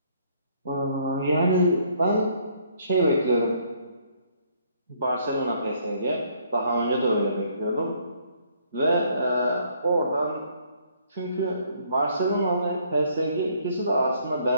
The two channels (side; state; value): both; inverted; correlation -0.65